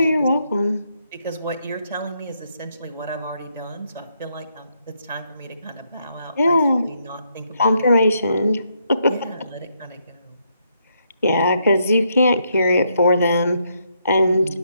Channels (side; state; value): both; inverted; correlation -0.77